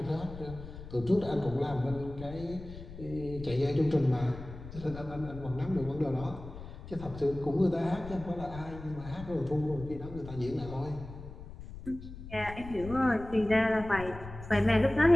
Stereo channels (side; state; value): left; noise; rumble, 13 dB below the sound